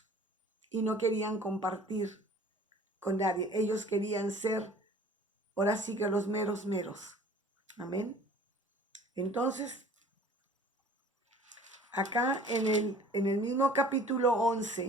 y no querían compartir con nadie. Ellos querían ser ahora sí que los meros meros. Amén. Entonces, acá en el mismo capítulo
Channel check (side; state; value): both; normal; correlation 0.49